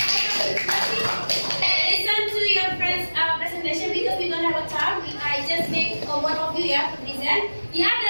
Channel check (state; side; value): inverted; both; correlation -1.00